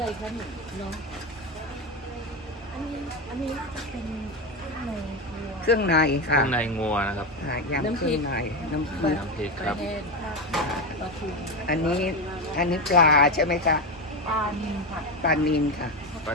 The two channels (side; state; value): both; normal; correlation 0.15